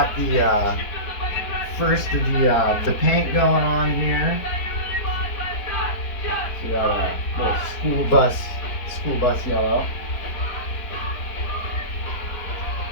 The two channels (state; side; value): late; right; 4.3 ms